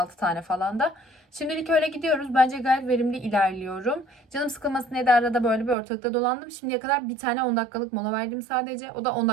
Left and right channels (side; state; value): left; drops out; at 5.8 s